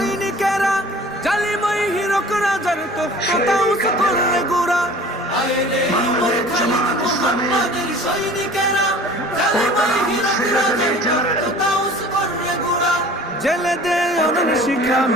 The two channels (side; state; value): both; normal; correlation 0.45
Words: জালিমই হিরক রাজার তখ্তাউস করলে গোরা। আয় রে উমর খালিদ মুহাম্মাদের সৈনিকেরা, জালিমই হিরক রাজার তখ্তাউস করলে গোরা। জেলে দে অনন শিখা